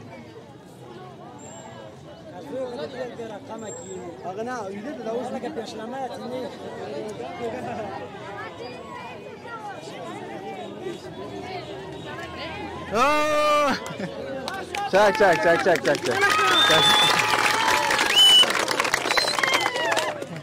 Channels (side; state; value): both; identical; correlation 1.00